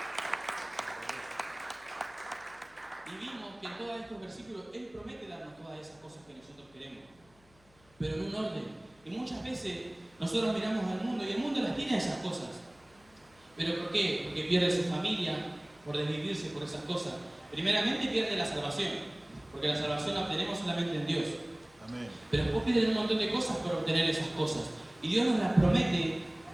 Y vimos que en todos estos versículos Él promete darnos todas esas cosas que nosotros queremos, pero en un orden. Y muchas veces nosotros miramos al mundo y el mundo las tiene esas cosas. ¿Pero por qué? Porque pierde su familia por desvivirse por esas cosas. Primeramente pierde la salvación, porque la salvación la obtenemos solamente en Dios. Amén. Pero después pierden un montón de cosas por obtener esas cosas. Y Dios nos las promete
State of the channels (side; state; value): left; noise; hum, 30 dB below the sound